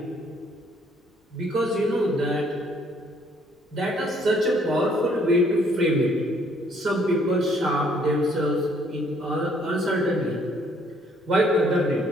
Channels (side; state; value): both; normal; correlation 0.64